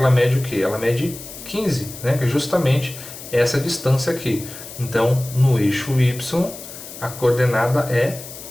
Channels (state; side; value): noise; left; hiss, 13 dB below the sound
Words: mede o quê? Ela mede 15, né? Que é justamente essa distância aqui. Então no eixo y a coordenada é